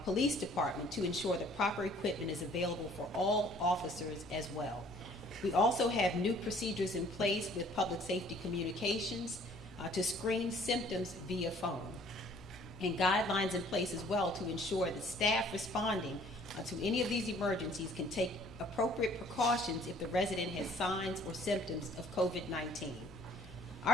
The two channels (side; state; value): both; normal; correlation 0.56